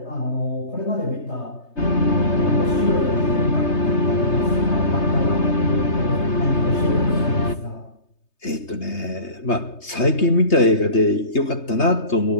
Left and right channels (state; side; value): late; right; 3.3 ms